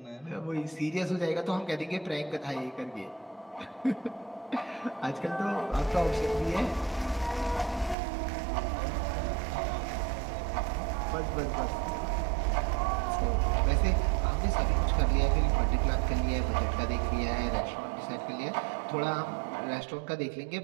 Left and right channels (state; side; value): drops out; left; at 8.0 s